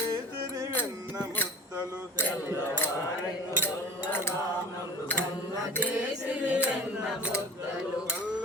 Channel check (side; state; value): both; normal; correlation 0.41